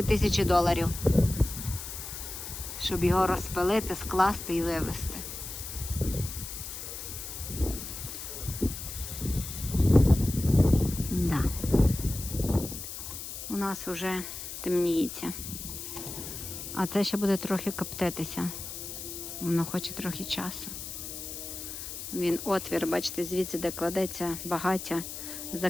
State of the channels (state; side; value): noise; left; hiss, 8 dB below the sound